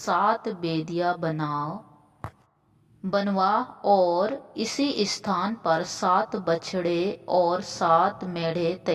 वेदियां बनवा और इसी स्थान पर 7 बछड़े और 7 मेढ़े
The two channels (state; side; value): identical; both; correlation 1.00